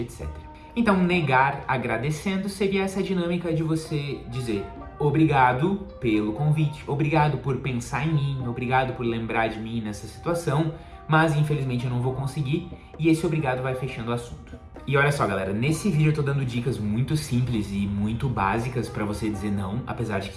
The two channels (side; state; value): both; identical; correlation 1.00